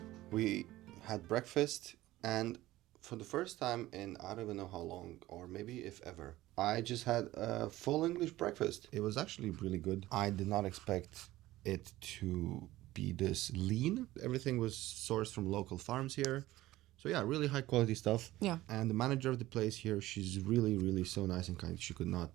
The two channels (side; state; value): left; quieter; 16.6 dB